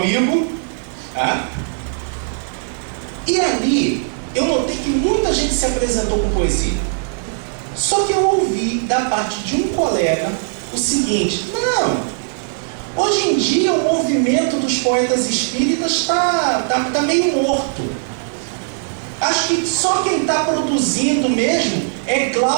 Tá? E ali, eu notei que muita gente se apresentou com poesia. Só que eu ouvi da parte de um colega o seguinte: não, hoje em dia o movimento dos poetas espíritas está meio morto. Acho que só quem está produzindo mesmo é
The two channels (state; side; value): silent; left; digital silence